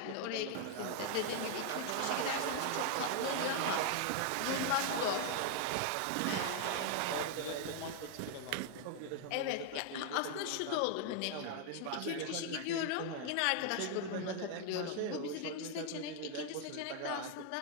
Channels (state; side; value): different; both; correlation 0.00